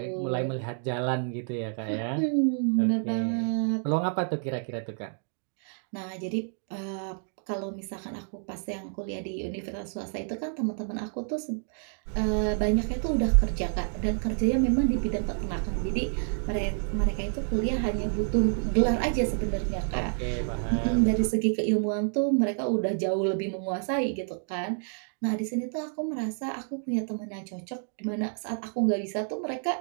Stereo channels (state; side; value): silent; left; 58 dB below the other